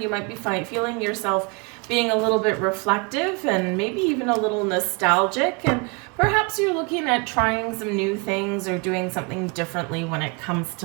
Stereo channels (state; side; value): quieter; left; 31.8 dB